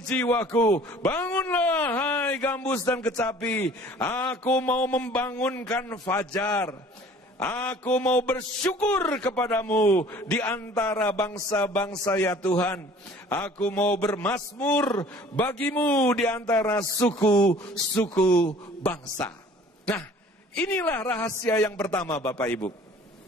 jiwaku, bangunlah hai gambus dan kecapi. Aku mau membangunkan fajar. Aku mau bersyukur kepadamu di antara bangsa-bangsa ya Tuhan. Aku mau bermazmur bagimu di antara suku-suku bangsa. Nah, inilah rahasia yang pertama Bapak Ibu.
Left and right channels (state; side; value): normal; both; correlation 0.50